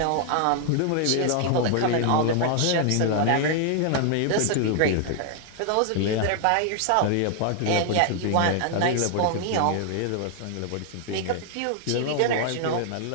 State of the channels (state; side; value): different; both; correlation 0.00